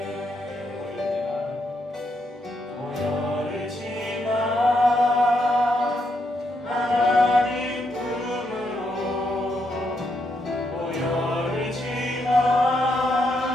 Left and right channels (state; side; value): normal; both; correlation 0.79